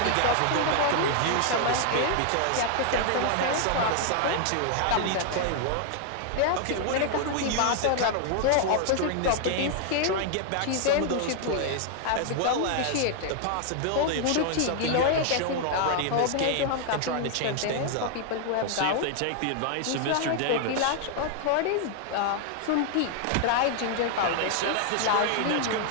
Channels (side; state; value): both; different; correlation 0.00